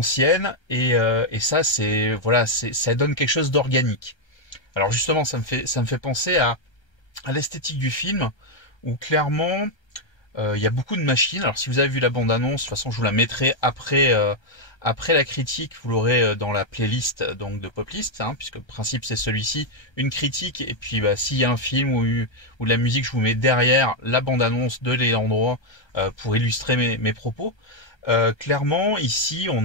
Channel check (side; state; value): right; late; 1.3 ms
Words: et ça ça donne quelque chose d'organique. Alors justement, ça me fait penser à à l'esthétique du film, où clairement il y a beaucoup de machines. Alors si vous avez vu la bande-annonce, de toute façon je vous la mettrai après la critique, vous l'aurez dans la playlist donc de Poplist, hein, puisque le principe c'est celui-ci, une critique, et puis bah, s'il y a un film ou de la musique, je vous mets derrière la bande-annonce de Léandroit pour illustrer mes propos. Clairement, ici